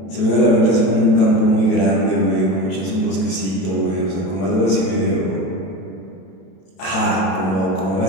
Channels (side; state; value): right; late; 31 ms